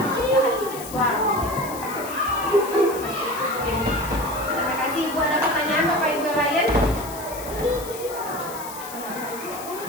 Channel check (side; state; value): left; noise; hiss, 13 dB below the sound